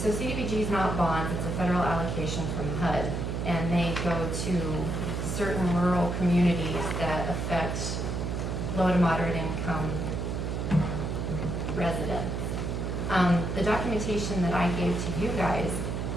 CDBG is not bonds, it's a federal allocation from HUD, and they go to certain rural communities that affect low to moderate income residents. The documentation that I gave to you guys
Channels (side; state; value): right; noise; hum, 2 dB below the sound